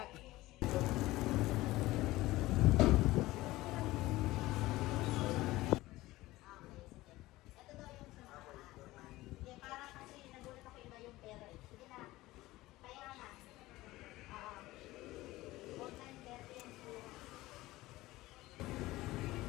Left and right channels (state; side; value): quieter; right; 18.2 dB